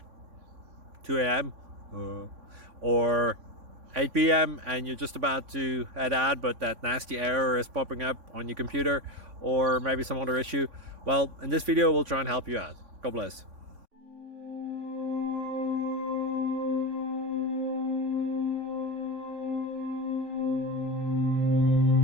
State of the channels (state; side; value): late; left; 3.5 ms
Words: 2 a.m. Or 8 p.m. and you're just about to head out, but that nasty error is popping up on your computer, or maybe some other issue. Well, in this video we'll try and help you out. God bless.